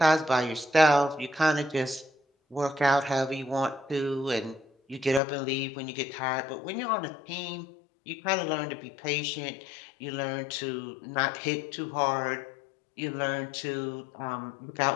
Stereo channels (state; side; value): drops out; right; at 5.2 s